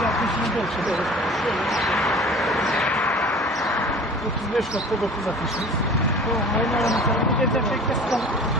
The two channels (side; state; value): both; normal; correlation 0.43